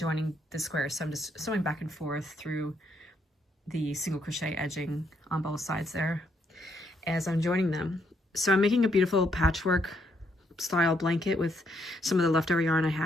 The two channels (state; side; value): normal; both; correlation 0.74